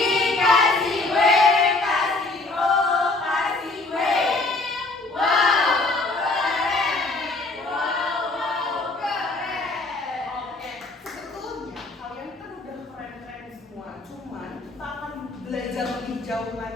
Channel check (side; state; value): right; quieter; 3.2 dB